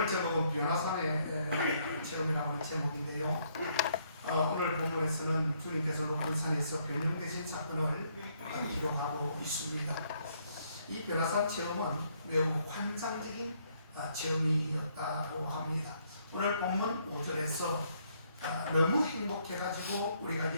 제목은 변화산의 체험이라는 제목인데요. 오늘 본문에서는 주님께서 높은 산에서 변형되신 사건을 기록하고 있습니다. 이 변화산 체험은 매우 환상적인 체험이었다고 합니다. 오늘 본문 5절에서 너무 행복해가지고 우리가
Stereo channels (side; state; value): both; inverted; correlation -0.70